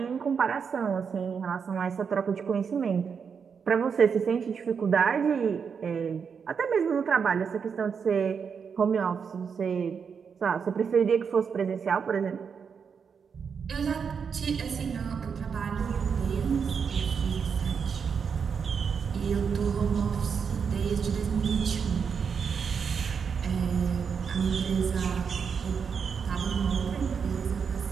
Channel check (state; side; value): quieter; left; 6.4 dB